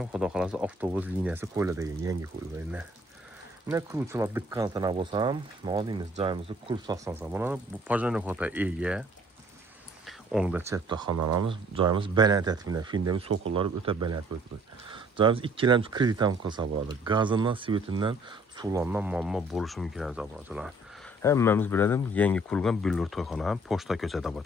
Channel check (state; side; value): normal; both; correlation 0.59